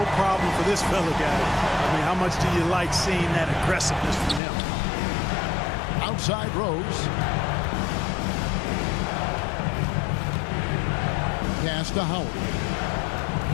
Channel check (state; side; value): drops out; right; at 4.4 s